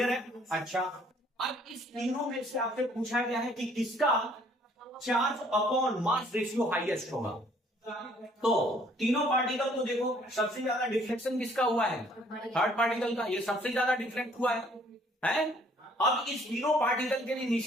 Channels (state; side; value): normal; both; correlation 0.61